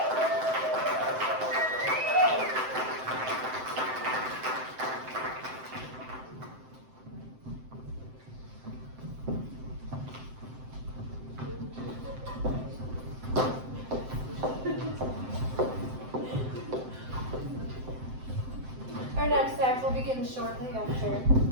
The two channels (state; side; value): late; left; 7.7 ms